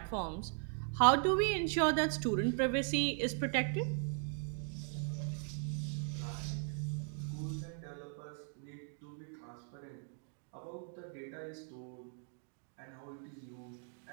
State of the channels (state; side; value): silent; left; 52 dB below the other